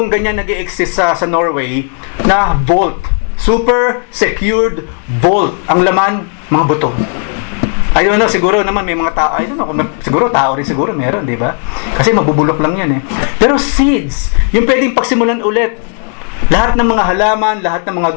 ganyan nag-i-exist sa Norway na vault. Super secured vault. Ang laman, mga buto. I don't know, siguro naman may mga tao, I don't know, siguro tao rin siguro meron, di ba? Kasi mabubulok lang yan eh. Pero seeds, yung pwedeng pagsimulan ulit. Lahat ng mga halaman, lahat ng mga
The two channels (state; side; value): quieter; right; 38.7 dB